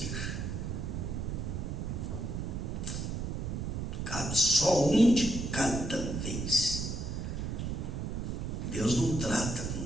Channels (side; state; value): right; noise; rumble, 3 dB below the sound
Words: Cabe só um de cada vez. Deus não trata